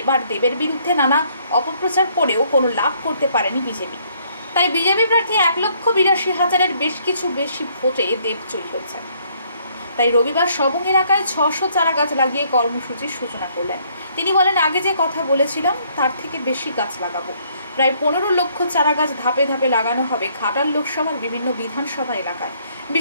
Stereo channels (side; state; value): both; inverted; correlation -0.66